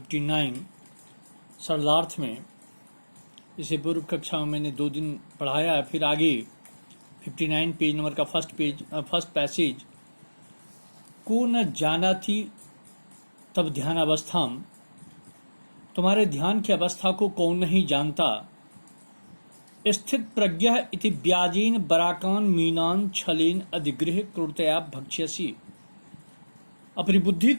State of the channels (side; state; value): both; inverted; correlation -1.00